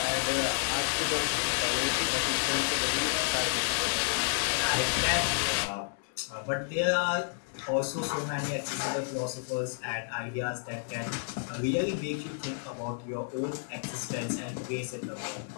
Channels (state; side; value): silent; right; 57 dB below the other